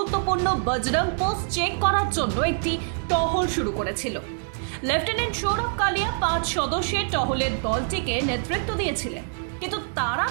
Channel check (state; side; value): silent; left; 62 dB below the other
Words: বজরং পোস্ট চেক করার জন্য একটি টহল শুরু করেছিল। লেফটেন্যান্ট সৌরভ কালিয়া 5 সদস্যের টহলের দলটিকে নেতৃত্ব দিয়েছিলেন, কিন্তু তারা